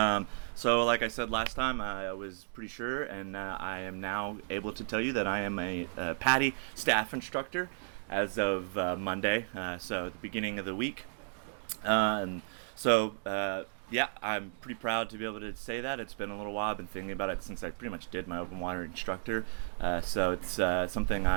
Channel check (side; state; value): left; silent; digital silence